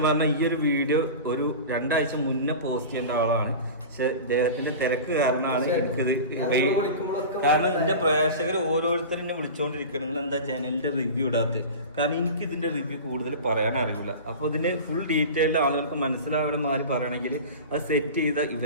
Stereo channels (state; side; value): inverted; both; correlation -0.32